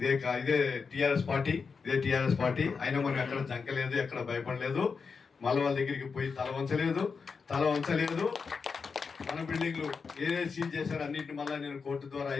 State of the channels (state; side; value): quieter; right; 5.3 dB